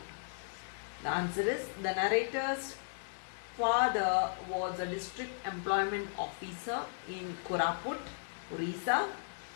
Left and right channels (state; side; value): silent; right; digital silence